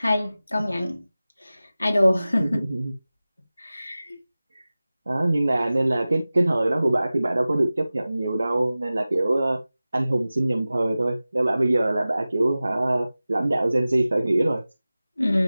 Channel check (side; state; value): both; inverted; correlation -0.97